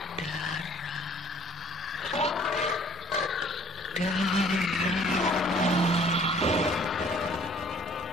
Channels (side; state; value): both; normal; correlation 0.55